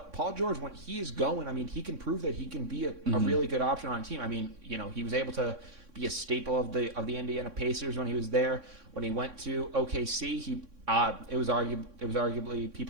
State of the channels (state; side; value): late; left; 3.6 ms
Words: Paul George, when he is going, I mean, he can prove that he can be a really good option on a team. I mean, he was able to be a staple of the Indiana Pacers when he was there. When he went to OKC, it was arguably